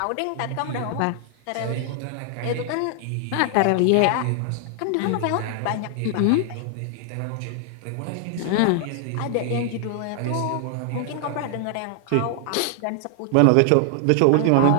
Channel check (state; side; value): different; both; correlation 0.00